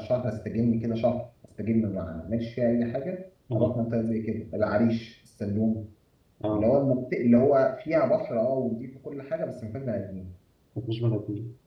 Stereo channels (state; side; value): identical; both; correlation 1.00